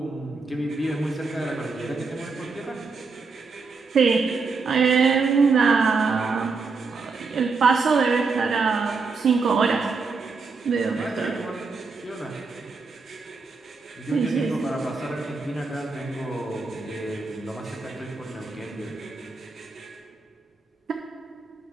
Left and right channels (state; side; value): quieter; left; 4.4 dB